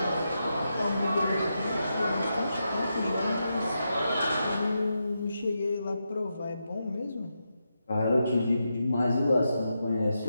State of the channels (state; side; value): inverted; both; correlation -0.86